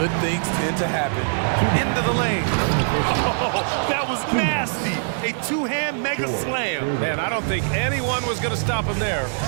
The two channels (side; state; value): left; silent; digital silence